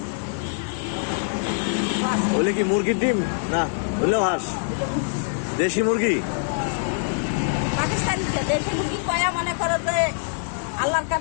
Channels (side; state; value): right; silent; digital silence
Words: ওলে কি মুরগির ডিম না হলেও হাঁস দেশি মুরগি পাকিস্তানি দেশি মুরগি কয়া মনে করে যে আল্লাহর